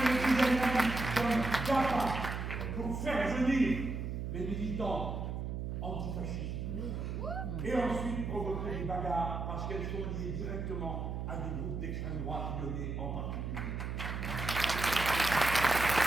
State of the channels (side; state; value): right; noise; hum, 4 dB below the sound